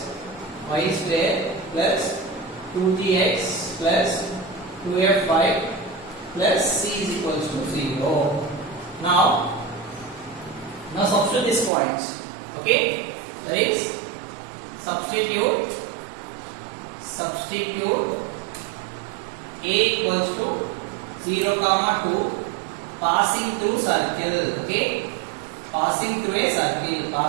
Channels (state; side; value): drops out; left; at 11.7 s